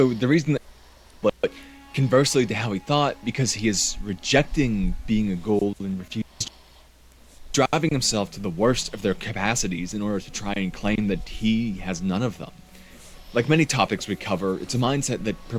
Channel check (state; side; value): identical; both; correlation 1.00